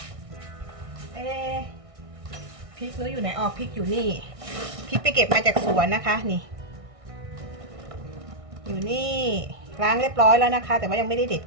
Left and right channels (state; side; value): late; left; 1.6 ms